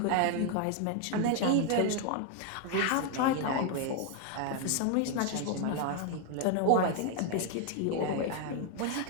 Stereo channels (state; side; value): different; both; correlation 0.01